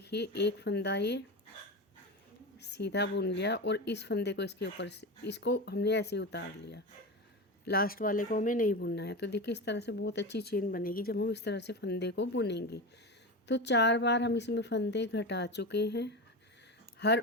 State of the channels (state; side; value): normal; both; correlation 0.22